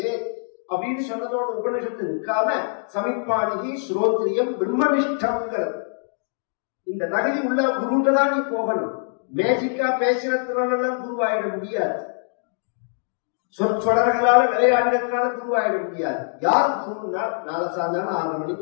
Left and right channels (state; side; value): silent; right; digital silence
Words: அப்படின்னு சொன்னதோட உபநிஷத்து நிற்காம சமிப்பாணிகி ஸ்ரோத்ரியம் பிரம்மனிஷ்டம்ங்கிறது. இந்த தகுதி உள்ள குருட்ட தான் நீ போகணும். மேஜிக்கா பேசுறதுனால குருவாயிட முடியாது, சொற்சொடர்களால விளையாடுறதுனால குருவாயிட முடியாது. யார் குருன்னா நாளை சாயந்தரம் 6:30